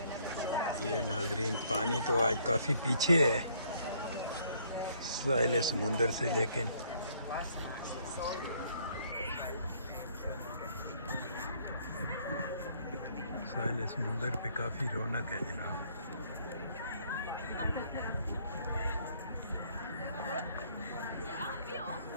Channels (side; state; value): both; inverted; correlation -0.64